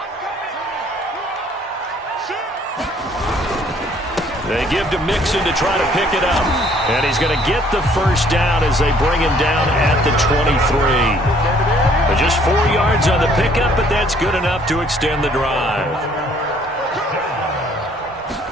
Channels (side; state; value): both; normal; correlation 0.61